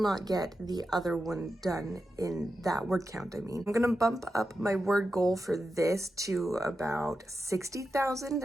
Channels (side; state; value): both; normal; correlation 0.89